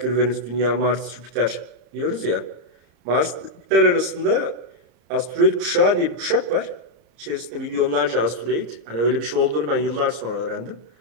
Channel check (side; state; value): left; late; 34 ms